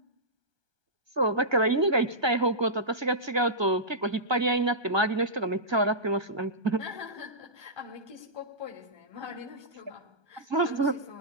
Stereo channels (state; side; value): late; left; 1.2 ms